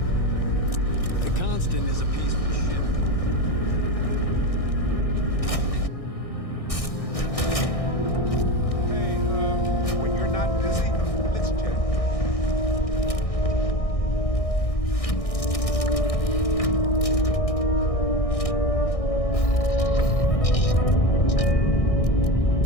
Captain is a peaceful ship. When you're not busy, let's chat.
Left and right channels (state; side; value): late; right; 1.6 ms